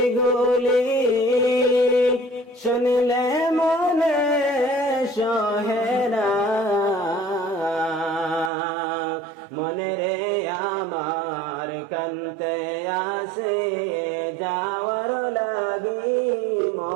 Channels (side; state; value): left; drops out; at 8.5 s